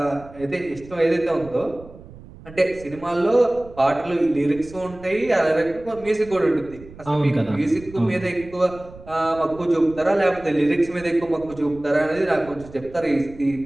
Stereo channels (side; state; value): right; noise; rumble, 19 dB below the sound